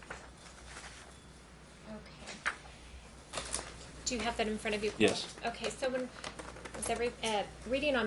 Do you have that in front of you? Yes. Okay, so when reading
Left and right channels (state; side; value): identical; both; correlation 1.00